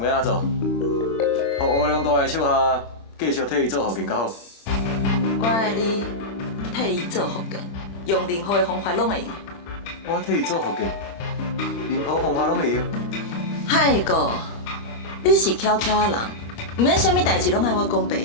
要安怎做？互乌龙大的手下继续替伊做福建较好。我爱你替伊做福建，用任何的方法拢会用。我替伊做福建，任何方法拢会用。海哥，你是巧巧的人，毋免啥物代志拢爱我讲白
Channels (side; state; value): right; late; 36 ms